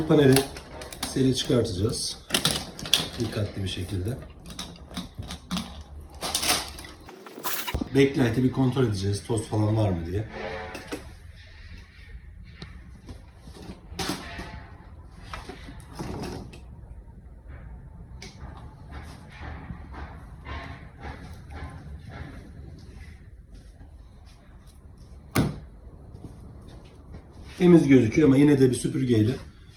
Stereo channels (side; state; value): both; identical; correlation 1.00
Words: paneli seri çıkartacağız. Dikkatli bir şekilde. Backlight'i bir kontrol edeceğiz. Toz falan var mı diye. Temiz gözüküyor ama yine de bir süpürgeyle